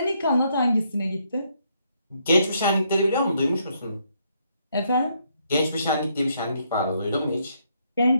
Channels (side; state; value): both; inverted; correlation -0.73